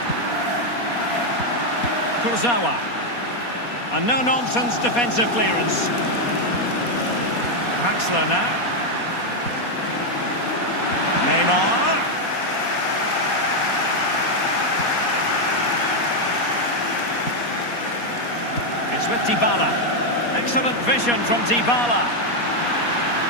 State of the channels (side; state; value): right; late; 4.2 ms